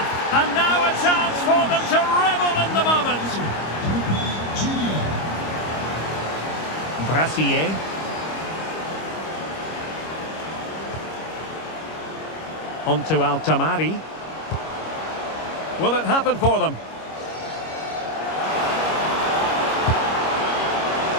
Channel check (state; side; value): late; right; 25 ms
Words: And now a chance for them to revel in the moment. Brassier. On to Altamari. Will it happen for them?